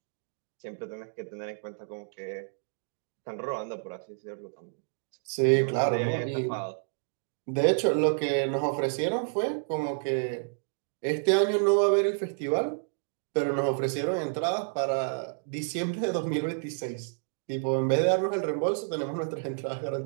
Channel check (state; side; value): silent; left; digital silence